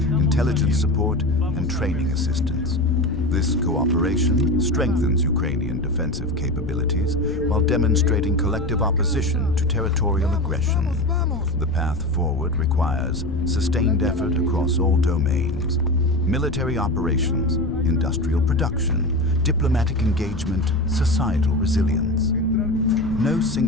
support, and training assistance. This cooperation strengthens Ukrainian defensive capabilities while demonstrating collective opposition to territorial aggression. The path forward requires sustained effort across all domains: military operations, industrial production, diplomatic engagement, societal resilience. No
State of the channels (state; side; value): noise; left; rumble, 9 dB below the sound